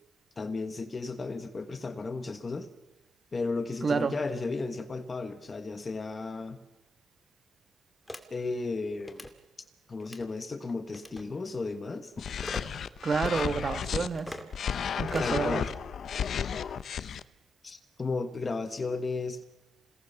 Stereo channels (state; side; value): normal; both; correlation 0.84